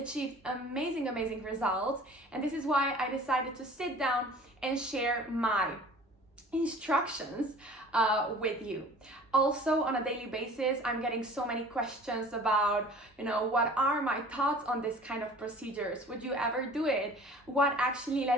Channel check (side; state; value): both; normal; correlation 0.45